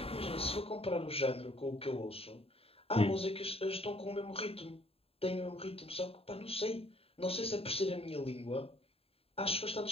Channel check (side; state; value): right; late; 0.28 ms